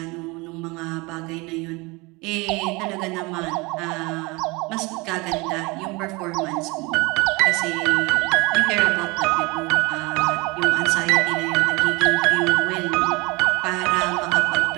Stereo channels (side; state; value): left; quieter; 25.5 dB